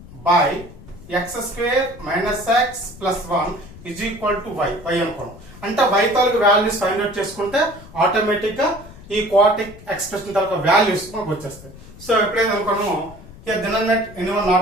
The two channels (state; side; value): noise; left; rumble, 18 dB below the sound